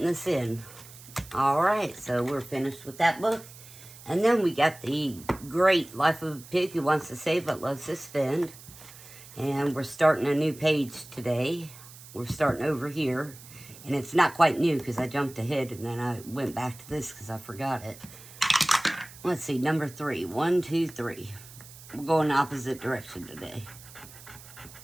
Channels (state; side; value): noise; right; hiss, 18 dB below the sound